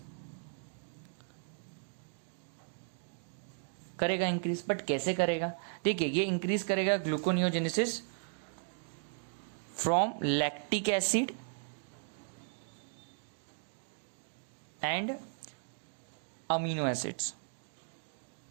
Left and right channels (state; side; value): silent; left; digital silence